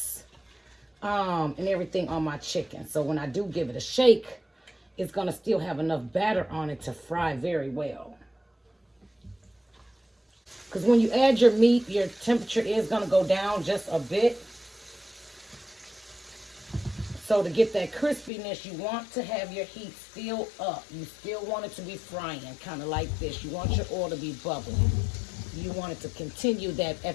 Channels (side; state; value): right; drops out; at 18.3 s